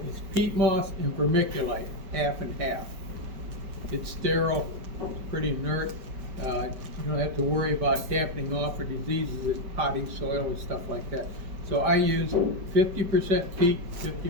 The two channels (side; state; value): left; late; 4.8 ms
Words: is peat moss and vermiculite, half and half. It's sterile, it's pretty inert. You don't have to worry about dampening off or diseases in potty soil and stuff like that. So I use 50% peat,